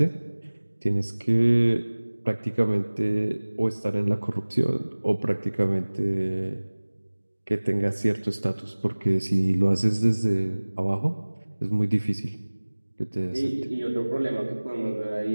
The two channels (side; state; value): both; inverted; correlation -1.00